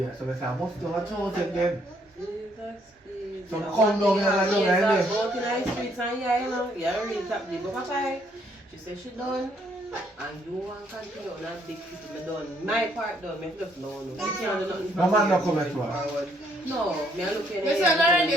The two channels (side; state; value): both; normal; correlation 0.69